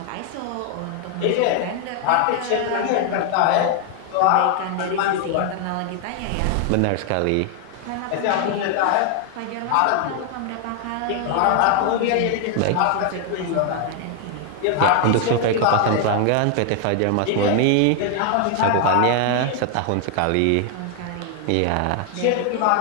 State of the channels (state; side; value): different; both; correlation 0.00